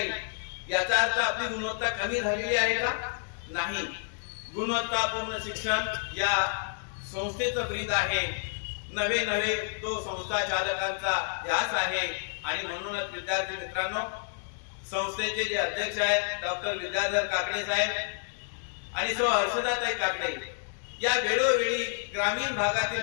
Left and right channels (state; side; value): silent; right; digital silence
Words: याचा अर्थ आपली गुणवत्ता कमी झालेली आहे का? नाही. गुणवत्तापूर्ण शिक्षण या संस्थेचं ब्रीद आहे. नवे तो संस्था चालकांचा ध्यास आहे. आणि म्हणूनच विद्यार्थी मित्रांनो, संस्थेचे जे अध्यक्ष आहेत डॉक्टर विद्याधर काकडे साहेब आणि सौ हर्षदाताई काकडे या वेळोवेळी ग्रामीण भागातील